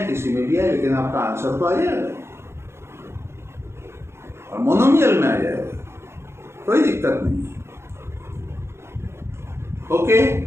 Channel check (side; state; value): left; late; 0.12 ms